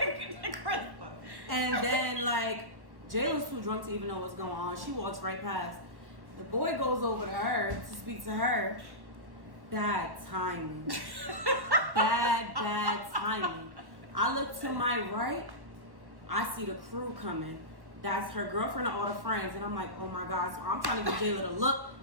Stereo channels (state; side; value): late; left; 1.1 ms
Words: then like Jaylah's too drunk to even know what's going on. She walks right past. The boy goes over to her to speak to her. Bad timing. Bad timing. I look to my right. I see the crew coming. That's her girlfriend and all the friends. And I'm like, oh my God. So I'm trying to get Jaelah to look.